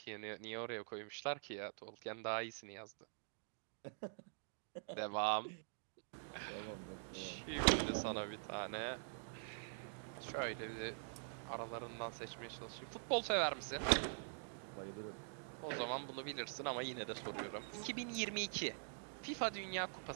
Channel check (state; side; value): silent; left; digital silence